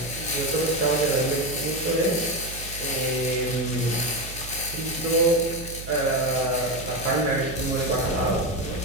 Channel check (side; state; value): right; noise; hum, 12 dB below the sound